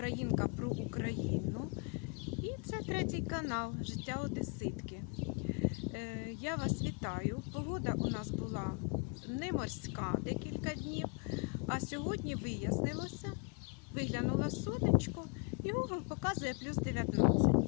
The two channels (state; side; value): quieter; right; 34.4 dB